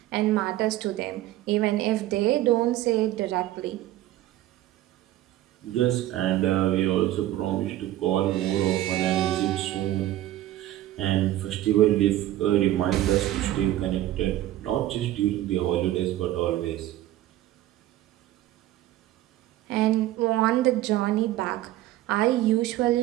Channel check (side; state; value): left; quieter; 14.4 dB